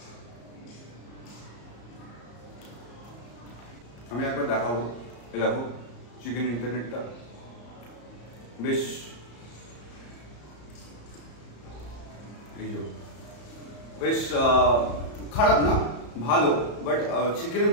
আমি একবার দেখাবো, দেখো চিকেন ইন্টারনেটটা বেশ, এই বেশ খারাপ না, ভালো, বাট চিকেনের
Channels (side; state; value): right; late; 34 ms